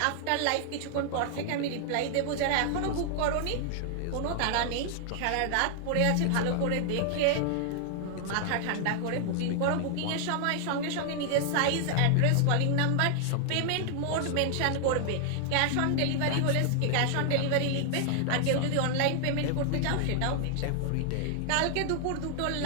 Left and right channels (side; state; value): both; different; correlation 0.00